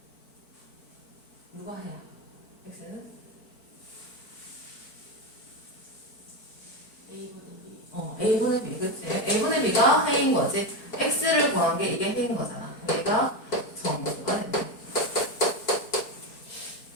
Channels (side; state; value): right; late; 4.5 ms